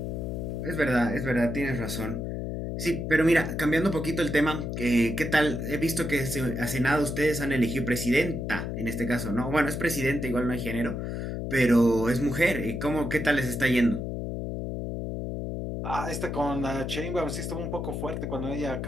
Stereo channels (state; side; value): noise; left; hum, 4 dB below the sound